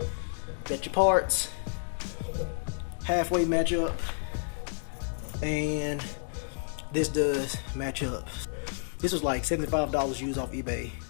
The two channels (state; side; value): silent; right; digital silence